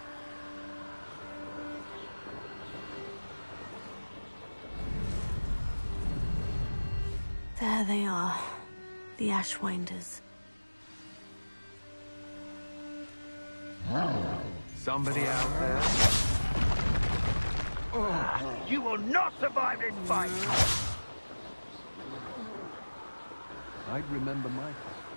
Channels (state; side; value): inverted; both; correlation -1.00